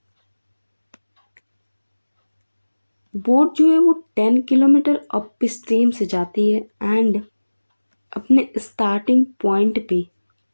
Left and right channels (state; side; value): inverted; both; correlation -1.00